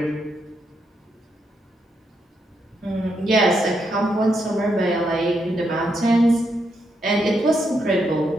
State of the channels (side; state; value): both; normal; correlation 0.80